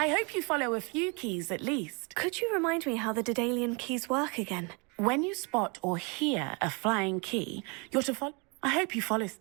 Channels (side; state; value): left; quieter; 31.6 dB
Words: hope you follow a few keys at least. Could you remind me how the Daedalian keys work again? When you spot or hear a flying key, you're to follow. I hope you follow.